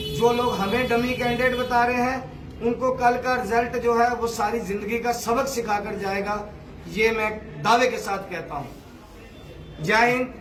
जो लोग हमें डमी कैंडिडेट बता रहे हैं उनको कल का रिजल्ट जो है वो सारी जिंदगी का सबक सिखाकर जाएगा, ये मैं दावे के साथ कहता हूँ। जय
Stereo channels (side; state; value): both; identical; correlation 1.00